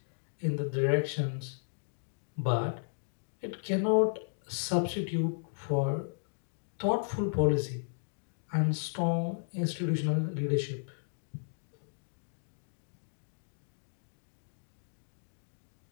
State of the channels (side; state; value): right; silent; digital silence